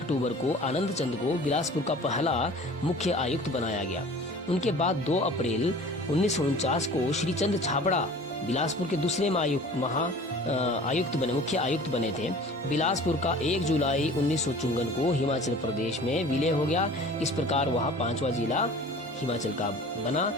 को आनंद चंद को बिलासपुर का पहला मुख्य आयुक्त बनाया गया। उनके बाद 2 अप्रैल 1949 को श्री चंद छाबड़ा बिलासपुर के दूसरे मुख्य आयुक्त बने थे। बिलासपुर का 1 जुलाई 1954 को हिमाचल प्रदेश में विलय हो गया। इस प्रकार वह 5वां जिला हिमाचल का बना।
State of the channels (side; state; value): both; normal; correlation 0.44